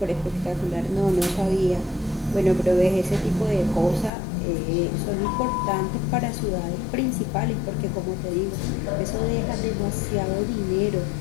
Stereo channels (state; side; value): drops out; right; at 4.1 s